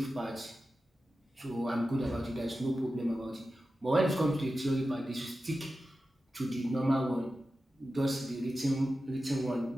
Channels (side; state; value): both; normal; correlation 0.93